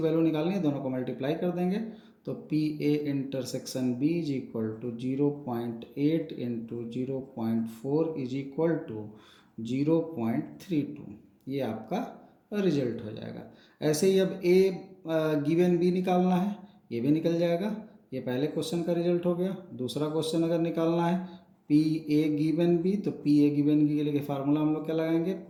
निकालनी है, दोनों को मल्टीप्लाई कर देंगे तो P A intersection B is equal to 0.8 into 0.4 is equal to 0.32, ये आपका रिजल्ट हो जाएगा। ऐसे ही अब ए गिवन बी निकालना है, ये भी निकल जाएगा, ये पहले क्वेश्चन का रिजल्ट हो गया। दूसरा क्वेश्चन अगर निकालना है पी ए गिवन बी, तो पी ए गिवन बी के लिए फार्मूला हम लोग क्या लगाएंगे,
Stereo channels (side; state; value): both; identical; correlation 1.00